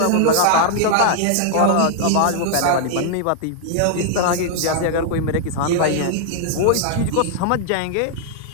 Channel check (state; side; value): different; both; correlation -0.01